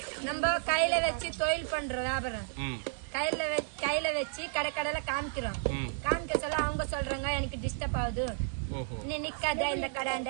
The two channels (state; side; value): silent; left; digital silence